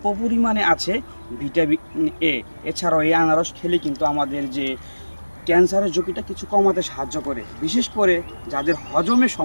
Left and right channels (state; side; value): inverted; both; correlation -1.00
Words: পরিমাণে আছে ভিটামিন এ। এছাড়াও এই আনারস খেলে কিন্তু আমাদের যে ক্যান্সারের ঝুঁকিটা কিছু কমাতে সাহায্য করে। বিশেষ করে যাদের হজমের